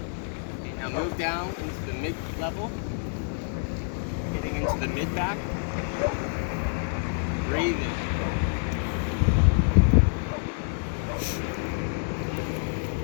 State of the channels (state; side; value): silent; right; 60 dB below the other